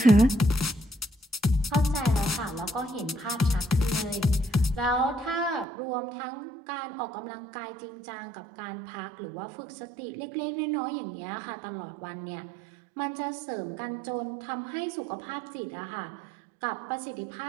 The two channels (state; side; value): drops out; left; at 5.7 s